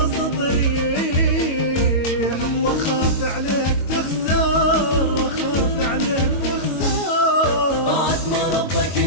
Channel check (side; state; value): right; late; 22 ms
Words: ريح، واخاف عليك تخسر، واخاف عليك تخسر. بعد ما ربك